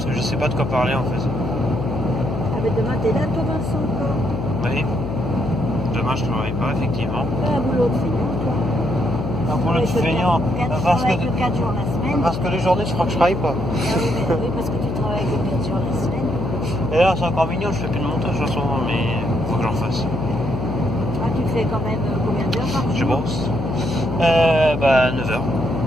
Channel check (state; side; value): noise; left; hum, 4 dB below the sound